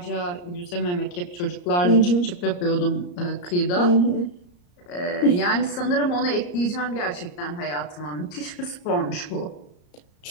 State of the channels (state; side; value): late; right; 34 ms